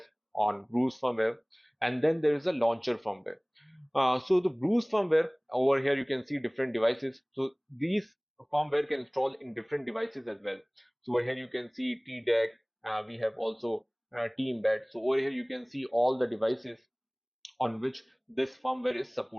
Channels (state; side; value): identical; both; correlation 1.00